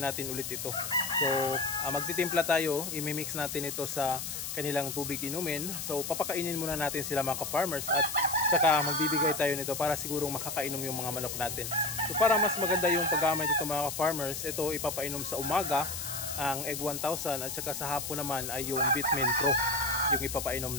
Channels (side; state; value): left; noise; hiss, 5 dB below the sound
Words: natin ulit ito. So magtitimpla tayo, imimix natin ito sa kanilang tubig inumin. So papakainin muna natin sila mga ka-farmers at saka magbibigay tayo nito para sigurong makakainom yung mga manok natin. So para mas maganda yung paggamit ito mga ka-farmers, ito ipapainom sa umaga ang Egg 1000 at saka sa hapon naman ay yung Vitamin Pro yung ipapainom